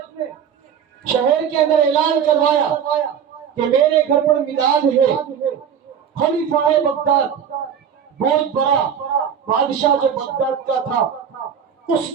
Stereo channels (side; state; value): left; quieter; 8.0 dB